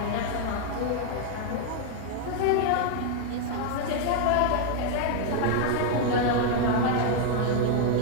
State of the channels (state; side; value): different; both; correlation 0.00